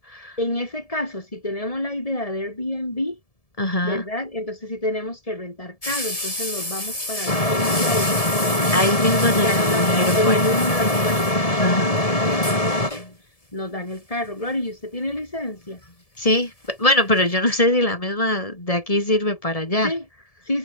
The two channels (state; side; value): late; right; 1.7 ms